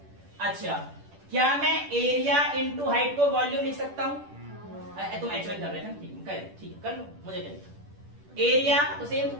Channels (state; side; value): late; left; 10 ms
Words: अच्छा, क्या मैं एरिया इंटू हाइट को वॉल्यूम लिख सकता हूं? तुम H1 कर रहे थे ना? ठीक है, कर लो, मुझे क्या लिखा? एरिया तो सेम,